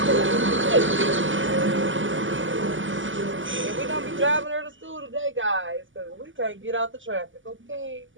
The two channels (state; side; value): late; left; 0.57 ms